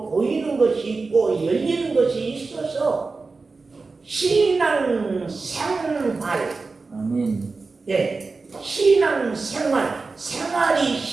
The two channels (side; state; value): left; quieter; 4.0 dB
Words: 보이는 것이 있고 열리는 것이 있어서 신앙 생활, 아멘. 네, 신앙 생활, 생활이